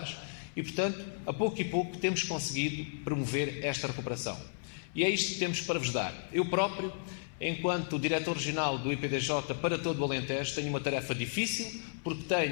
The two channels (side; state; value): right; silent; 55 dB below the other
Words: e, portanto, a pouco e pouco temos conseguido promover esta recuperação. E é isto que temos para vos dar. Eu próprio, enquanto diretor regional do IPDJ para todo o Alentejo, tenho uma tarefa difícil, porque